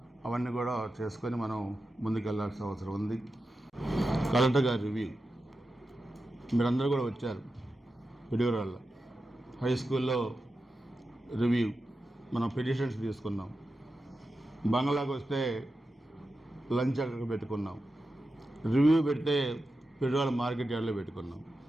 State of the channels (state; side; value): normal; both; correlation 0.91